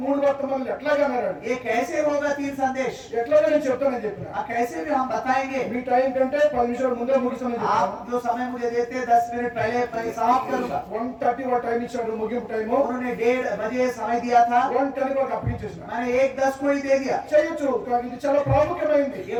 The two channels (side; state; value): both; identical; correlation 1.00